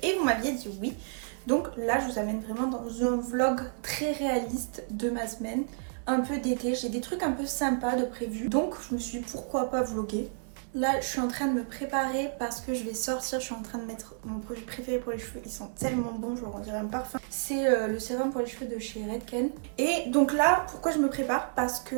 et vous m'aviez dit oui. Donc là je vous amène vraiment dans un vlog très réaliste de ma semaine, un peu d'été. J'ai des trucs un peu sympas de prévu, donc je me suis dit pourquoi pas vlogger. Là je suis en train de me préparer parce que je vais sortir. Je suis en train de mettre mon produit préféré pour les cheveux, ils sont tellement bons, je on dirait un parfum. C'est le sérum pour les cheveux de chez Redken. Et donc là pourquoi je me prépare, parce que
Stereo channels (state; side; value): silent; left; 57 dB below the other